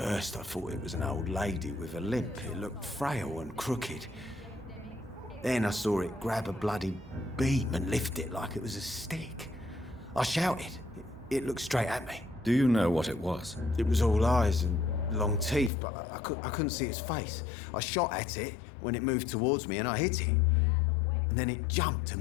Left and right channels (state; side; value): drops out; right; at 15.7 s